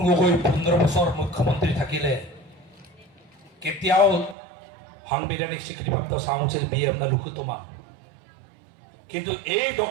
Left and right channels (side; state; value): left; drops out; at 4.4 s